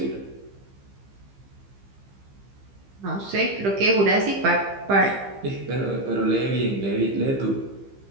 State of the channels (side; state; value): left; late; 15 ms